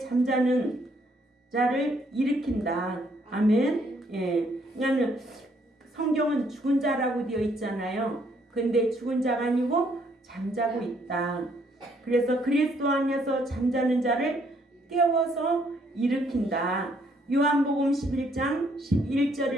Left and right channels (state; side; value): normal; both; correlation 0.68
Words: 자를 일으킨다. 아멘. 그러니까 성경은 죽은 자라고 되어 있잖아요. 근데 죽은 자가 아니고 잠자고 있다. 그래서 그리스도 안에서 잠자는 자를 깨워서 일으킨다. 요한복음 11장